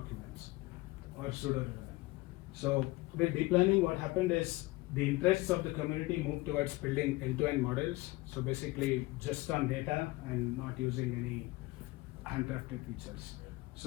or pseudo-relevant. So with deep learning, what happened is the interests of the community moved towards building end-to-end models. So basically just on data and not using any handcrafted features.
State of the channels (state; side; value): quieter; right; 21.1 dB